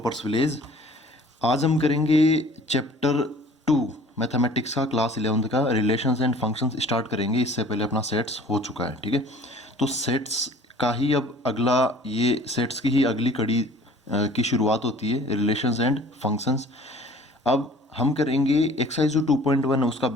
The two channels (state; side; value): normal; both; correlation 0.49